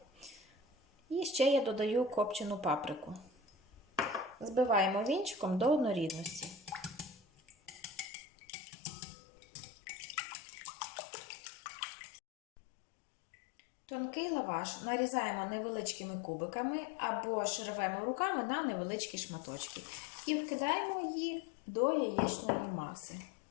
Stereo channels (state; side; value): drops out; right; at 8.1 s